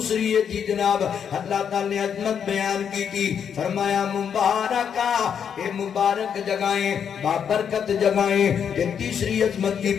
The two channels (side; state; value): right; quieter; 7.8 dB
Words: ہے جی جناب اللہ تعالی نے عظمت بیان کی تھی فرمایا مبارکہ اے مبارک جگہیں بابرکت جگہیں کہ تیسری عظمت کی